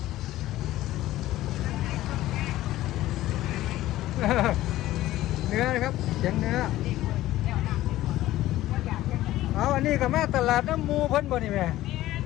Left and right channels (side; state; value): right; quieter; 15.3 dB